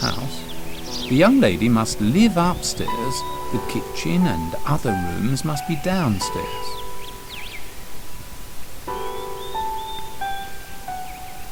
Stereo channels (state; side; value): identical; both; correlation 1.00